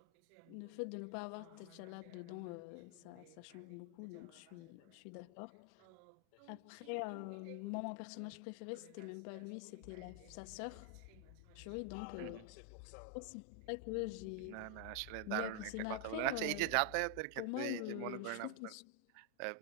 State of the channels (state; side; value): different; both; correlation 0.00